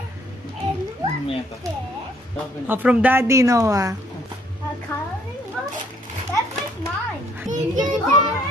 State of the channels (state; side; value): normal; both; correlation 0.65